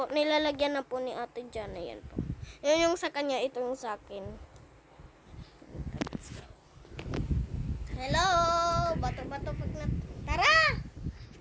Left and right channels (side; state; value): both; identical; correlation 1.00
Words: Nilalagyan na po ni Ate Jana. Yan po. Yan yung sa kanya, ito yung sa akin. Hello! Bato-bato pag na... Tara!